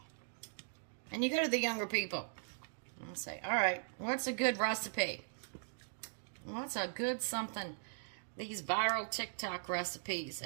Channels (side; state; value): left; silent; digital silence